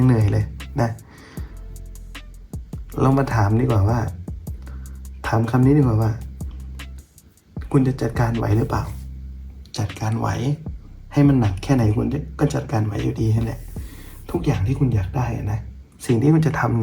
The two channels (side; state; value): both; identical; correlation 1.00